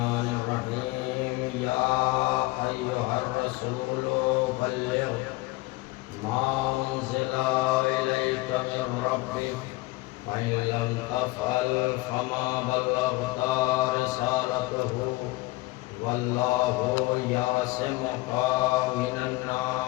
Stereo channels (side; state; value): right; quieter; 21.2 dB